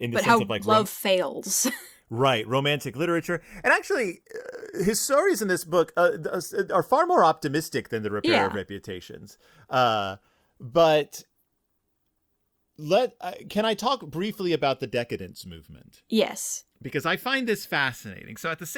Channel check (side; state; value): both; identical; correlation 1.00